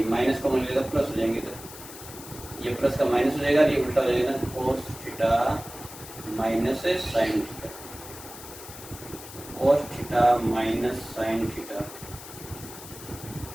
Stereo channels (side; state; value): left; noise; hiss, 14 dB below the sound